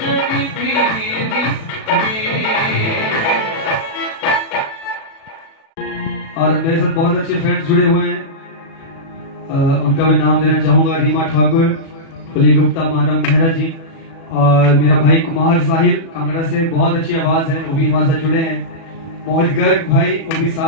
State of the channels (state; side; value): late; right; 37 ms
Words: तेरी। और मेरे साथ बहुत अच्छे फ्रेंड्स जुड़े हुए हैं, उनका मैं नाम देना चाहूंगा। रीमा ठाकुर, कुली गुप्ता, मानव मेहरा जी, और मेरा भाई कुमार साहिल कांगड़ा से, बहुत अच्छी आवाज है, वो भी हमारे साथ जुड़े हैं। मोहित गर्ग भाई वो भी